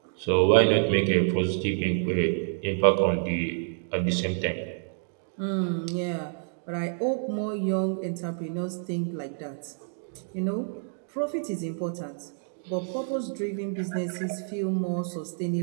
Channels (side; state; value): left; silent; digital silence